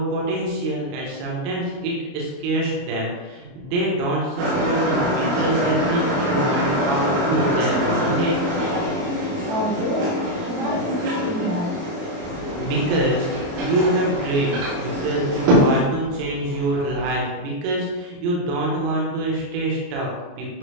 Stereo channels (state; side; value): late; left; 29 ms